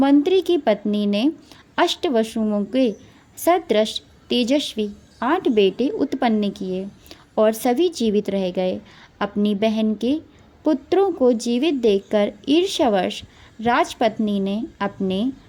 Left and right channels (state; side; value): identical; both; correlation 1.00